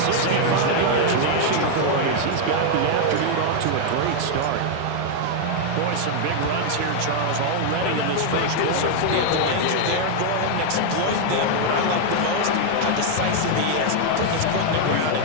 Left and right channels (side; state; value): both; different; correlation 0.00